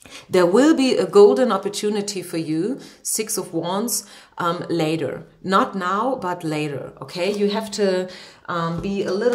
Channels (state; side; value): identical; both; correlation 1.00